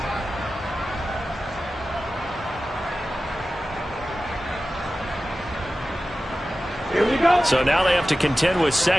Here we go. So now they have to contend with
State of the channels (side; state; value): both; normal; correlation 0.95